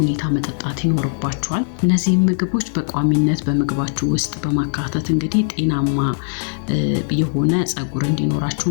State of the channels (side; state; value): right; silent; digital silence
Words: መጠጣት ይኖርባቸዋል። እነዚህ ምግቦች በቋሚነት በምግባችሁ ውስጥ በማካተት እንግዲህ ጤናማ የሆነ ፀጉር